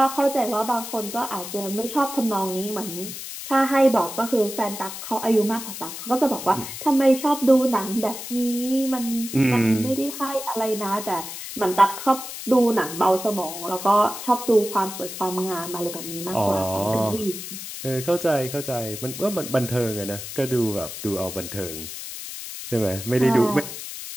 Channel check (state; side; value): noise; left; hiss, 9 dB below the sound